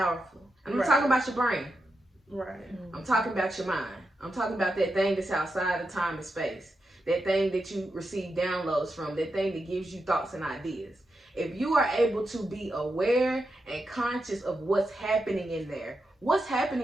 And I'm talking about your brain. Right. I'm talking about your mind. I'm talking about that thing that's outside of time and space. That thing that you receive downloads from. That thing that gives you thoughts and ideas. If you are able to be aware and conscious of what's happening in there, what's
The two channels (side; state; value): both; normal; correlation 0.87